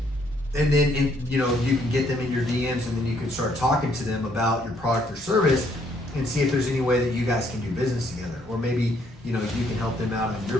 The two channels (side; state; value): both; normal; correlation 0.68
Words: and then you can get them in your DMs, and then you can start talking to them about your product or service and see if there's any way that you guys can do business together, or maybe you can help them out